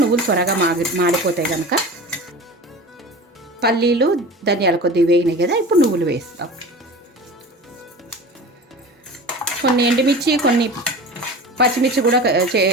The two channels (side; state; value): both; normal; correlation 0.35